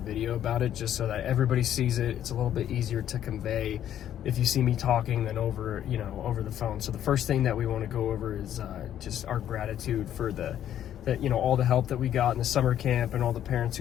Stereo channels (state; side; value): quieter; right; 10.8 dB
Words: about it just so that everybody sees it. It's a little bit easier to convey if you see me talking than over the phone. So the first thing that we want to go over is just our gratitude for all the help that we got in the summer camp and all the parents